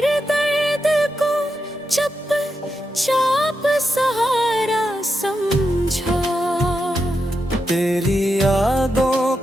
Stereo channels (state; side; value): normal; both; correlation 0.86